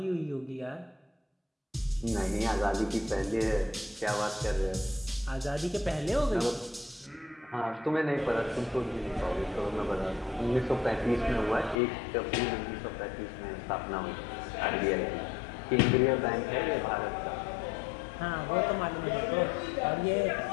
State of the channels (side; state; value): right; drops out; at 11.8 s